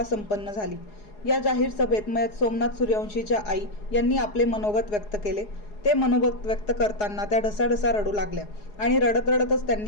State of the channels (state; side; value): late; right; 4.8 ms